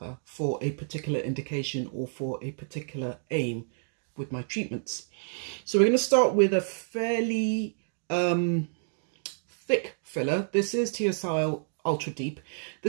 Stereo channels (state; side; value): silent; left; digital silence